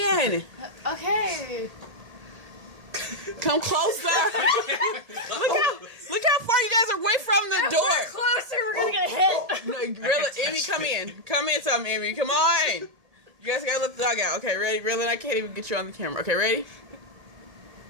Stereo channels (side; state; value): left; late; 1.8 ms